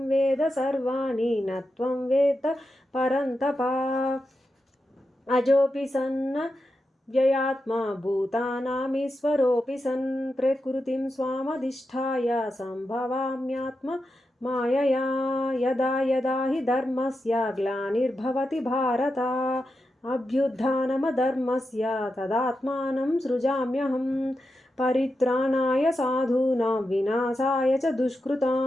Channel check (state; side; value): normal; both; correlation 0.88